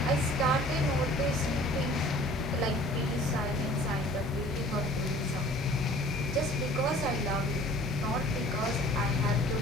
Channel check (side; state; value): both; normal; correlation 0.49